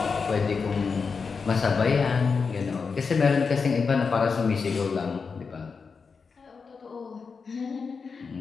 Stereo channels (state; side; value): quieter; right; 5.2 dB